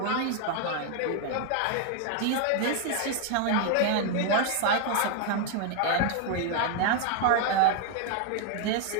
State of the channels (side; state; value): both; different; correlation 0.00